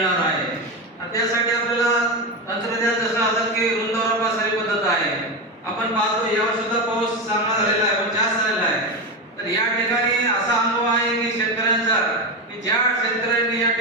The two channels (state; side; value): normal; both; correlation 0.16